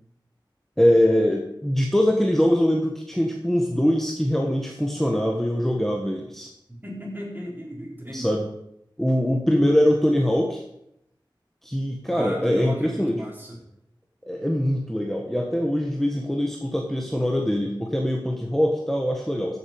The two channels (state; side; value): normal; both; correlation 0.97